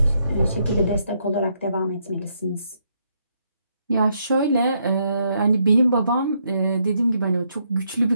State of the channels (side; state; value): both; inverted; correlation -0.75